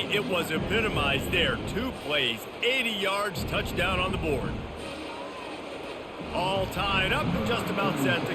It was epitomized there. 2 plays, 80 yards, touchdown on the board. All tied up and just about set to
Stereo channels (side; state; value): both; identical; correlation 1.00